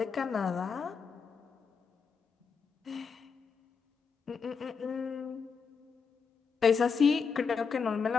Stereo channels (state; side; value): quieter; right; 5.7 dB